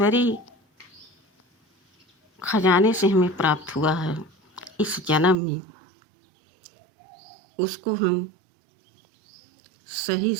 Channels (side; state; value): left; drops out; at 5.4 s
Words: खजाने से हमें प्राप्त हुआ है इस जन्म में, उसको हम सही